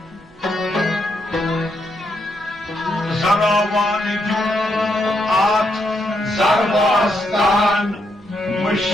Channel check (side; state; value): both; normal; correlation 0.79